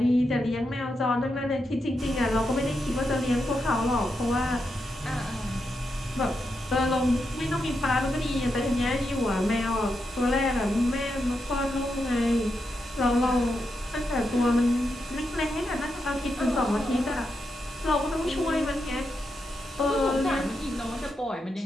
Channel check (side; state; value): both; normal; correlation 0.85